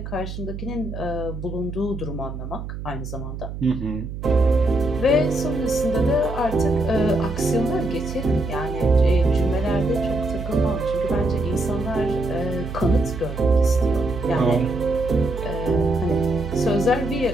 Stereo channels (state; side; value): noise; right; hum, 8 dB below the sound